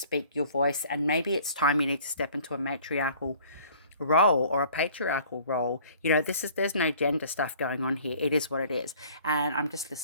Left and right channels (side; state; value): both; inverted; correlation -0.52